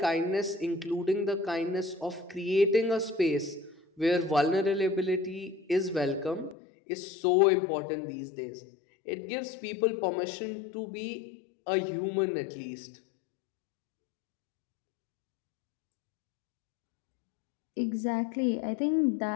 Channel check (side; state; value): right; drops out; at 6.6 s